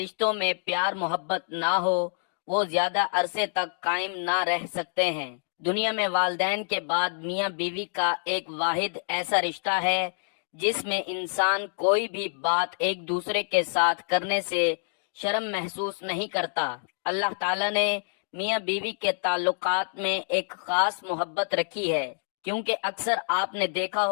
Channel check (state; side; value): silent; right; digital silence